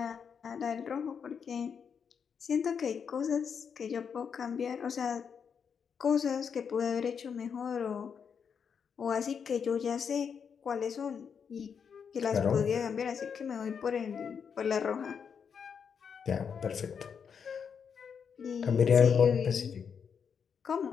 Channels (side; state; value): right; quieter; 6.8 dB